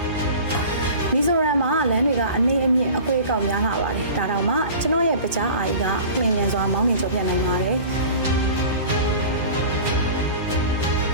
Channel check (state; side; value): inverted; both; correlation -0.39